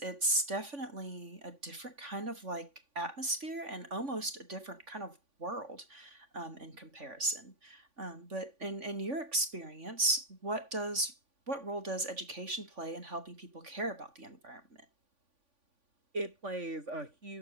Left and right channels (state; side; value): late; left; 3.5 ms